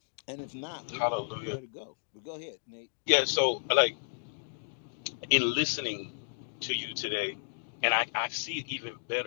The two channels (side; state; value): right; silent; digital silence